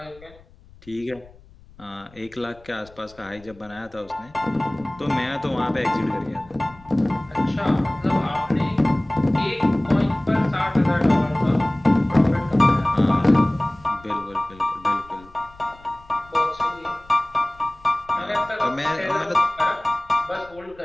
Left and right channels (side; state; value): left; noise; rumble, 25 dB below the sound